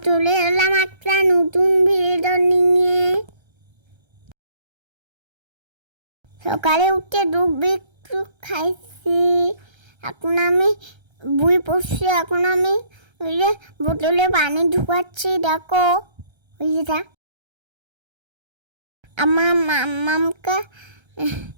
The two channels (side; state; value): left; late; 1.3 ms